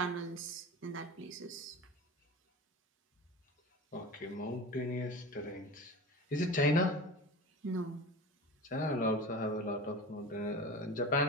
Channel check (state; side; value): normal; both; correlation 0.32